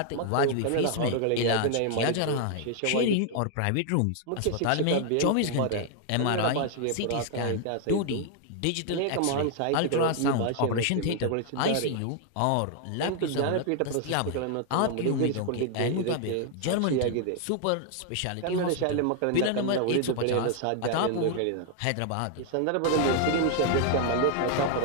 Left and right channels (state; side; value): different; both; correlation 0.00